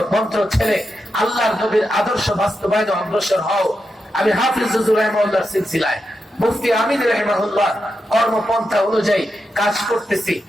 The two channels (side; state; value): both; normal; correlation 0.87